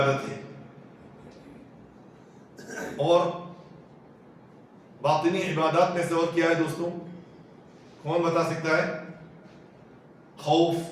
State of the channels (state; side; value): identical; both; correlation 1.00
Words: ہے۔ اور باطنی عبادات میں سے اور کیا ہے دوستوں؟ کون بتا سکتا ہے؟